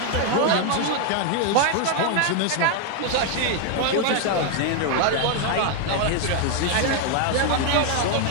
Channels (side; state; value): both; different; correlation 0.00